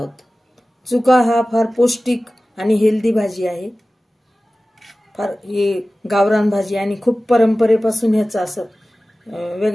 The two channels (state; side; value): normal; both; correlation 0.97